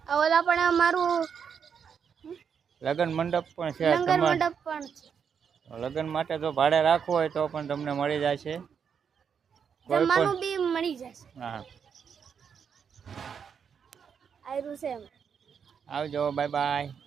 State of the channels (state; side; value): quieter; left; 7.0 dB